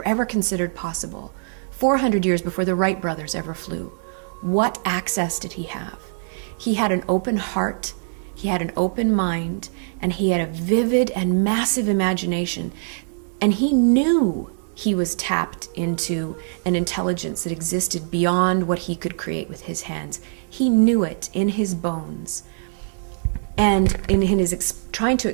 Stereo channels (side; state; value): left; silent; 63 dB below the other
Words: ever considered possible, 400 years before the Wright brothers ever flew? What access did he have? He had an open heart, he had an open mind, and he had a vivid and massive imagination. And he knew he was tapped into an intelligence that existed beyond what he could create with his hands. He knew it in his bones. And in his trying to